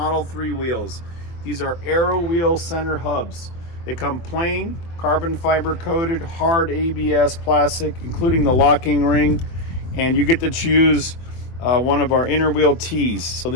3 wheels. These are Aero Wheel Center Hubs. They come plain, carbon fiber coated, hard ABS plastic, including the locking ring, and you get to choose one of our inner wheel tees. So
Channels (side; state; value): right; late; 23 ms